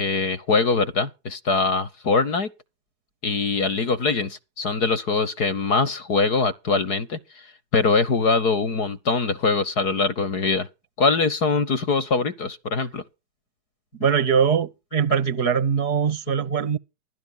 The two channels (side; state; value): right; late; 4.7 ms